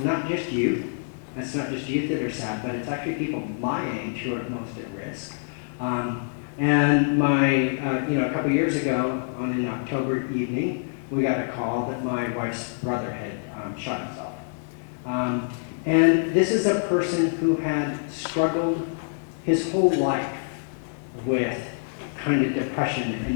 not just youth. It's not just youth that are sad, but it's actually people my age who are most at risk. And a couple years ago, on an October evening, we got a call that my wife's brother had shot himself. And this is a person who had struggled his whole life with kind of depression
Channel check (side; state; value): right; silent; digital silence